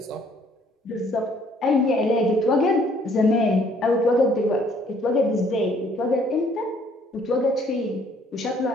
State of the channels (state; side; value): normal; both; correlation 0.62